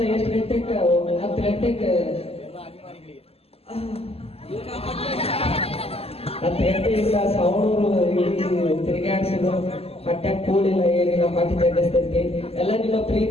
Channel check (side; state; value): right; late; 0.29 ms